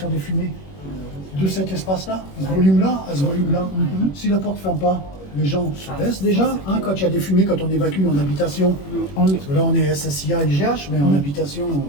des fumées de cet espace-là, ce volume-là, à ce volume-là. Si la porte ne ferme pas, les gens se baissent déjà, hein, quand il y a des fumées, quand on évacue en habitation. Parce que là, on est SSIA, IGH, mais en habitation,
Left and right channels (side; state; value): right; late; 21 ms